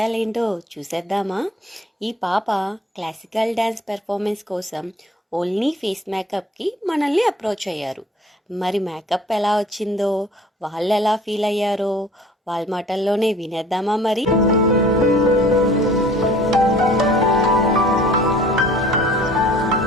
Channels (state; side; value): normal; both; correlation 0.51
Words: చూసేద్దామా? ఈ పాప క్లాసికల్ డ్యాన్స్ పెర్ఫార్మెన్స్ కోసం ఓన్లీ ఫేస్ మేకప్కి మనల్ని అప్రోచ్ అయ్యారు. మరి మేకప్ ఎలా వచ్చిందో, వాళ్ళు ఎలా ఫీల్ అయ్యారో వాళ్ళ మాటల్లోనే వినేద్దామా మరి?